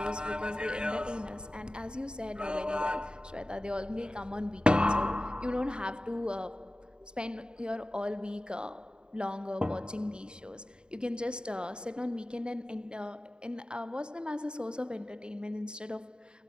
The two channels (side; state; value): left; late; 0.049 ms